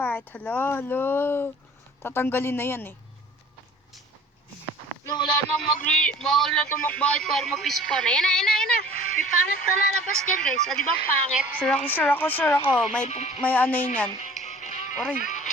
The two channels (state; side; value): normal; both; correlation 0.47